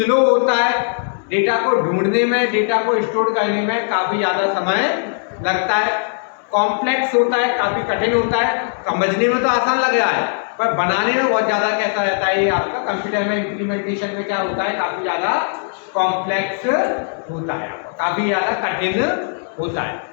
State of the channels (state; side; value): silent; right; digital silence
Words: होता है, डेटा को ढूंढने में, डेटा को स्टोर करने में काफ़ी ज़्यादा समय लगता है, कॉम्प्लेक्स होता है, काफ़ी कठिन होता है। समझने में तो आसान लग रहा है, पर बनाने में बहुत ज़्यादा कैसा रहता है ये आपका कंप्यूटर में इम्प्लीमेंटेशन में क्या होता है? काफ़ी ज़्यादा कॉम्प्लेक्स होता है, काफ़ी ज़्यादा कठिन होता है।